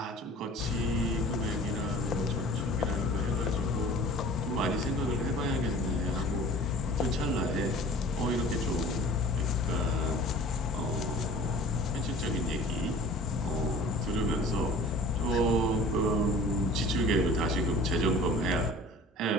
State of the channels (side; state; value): both; normal; correlation 0.45